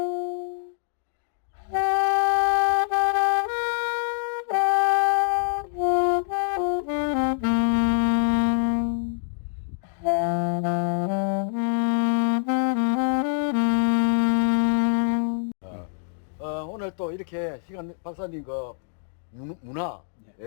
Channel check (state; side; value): silent; right; digital silence